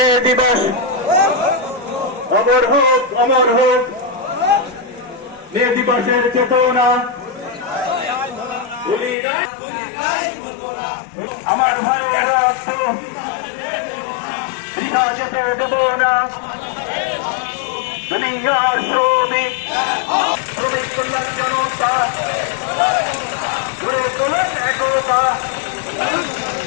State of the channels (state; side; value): drops out; right; at 9.2 s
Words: দিবস অমর হোক মে দিবসের চেতনা আমার ভাইয়েরা বৃথা যেতে দেব না দুনিয়ার শ্রমিক কল্যাণ জনতা গড়ে তোলেন একতা